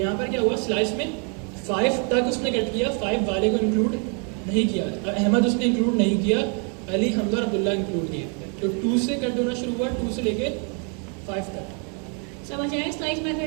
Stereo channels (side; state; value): left; quieter; 39.1 dB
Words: पर क्या हुआ, स्लाइस में 5 तक उसने कट किया, 5 वाले को इंक्लूड नहीं किया, अहमद उसने इंक्लूड नहीं किया, अली, हमजा और अब्दुल्ला इंक्लूड किए। तो 2 से कट होना शुरू हुआ, 2 से लेके 5 तक। समझ आया स्लाइस